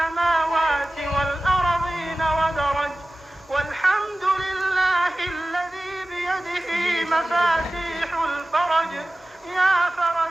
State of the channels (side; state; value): both; normal; correlation 0.96